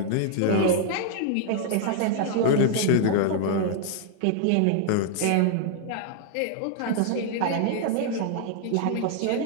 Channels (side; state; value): both; different; correlation 0.00